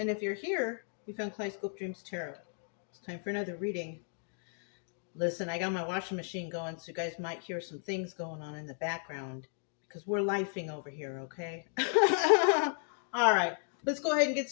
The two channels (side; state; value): right; silent; 55 dB below the other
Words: if you're here, you found Kaleidoscope Dreams Tarot. It's time for another reading. Listen, I got my washing machine going, so you guys might hear some things going on in the background because we're lifing over here, okay? All right, let's go ahead and get